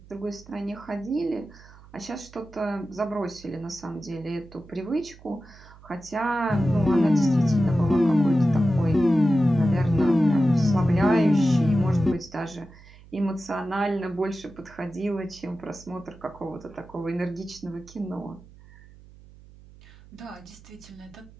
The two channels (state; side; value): noise; right; hum, 22 dB below the sound